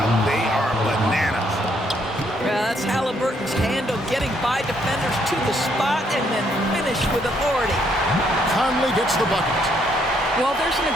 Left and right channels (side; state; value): both; normal; correlation 0.71